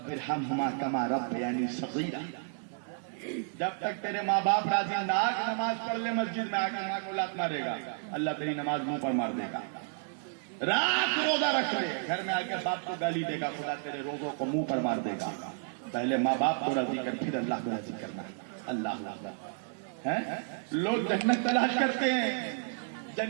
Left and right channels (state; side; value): silent; left; 57 dB below the other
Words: ارحمہما کما ربیانی صغیرا. جب تک تیرے ماں باپ راضی نہ کہ نماز پڑھ لے مسجد میں آ کے ماں کو لات مارے گا, اللہ تیری نماز منہ پر مار دے گا. رات روزہ رکھ لے, گھر میں آ کے باپ کو گالی دے گا, خدا تیرے روزوں کو منہ پر مار دے گا. پہلے ماں باپ کو راضی کر, پھر اللہ کو راضی کرنا. اللہ لوگ جنت تلاش کرتے ہیں,